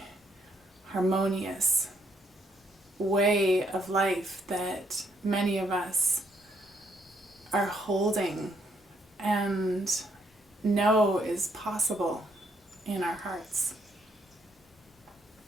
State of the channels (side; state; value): both; normal; correlation 0.73